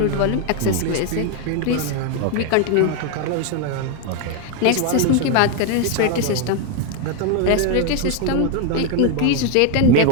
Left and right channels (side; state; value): both; different; correlation 0.01